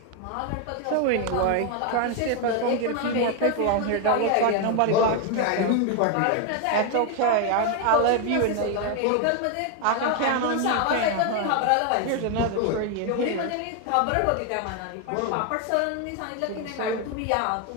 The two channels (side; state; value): both; different; correlation 0.01